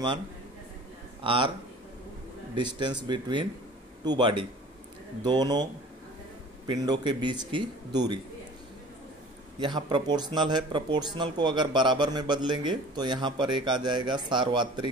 r distance between two body दोनों पिंडों के बीच की दूरी। यहाँ प्रोपोर्शनल है, प्रोपोर्शनल को अगर बराबर में बदलेंगे तो यहाँ पर एक आ जाएगा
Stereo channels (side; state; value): both; normal; correlation 0.45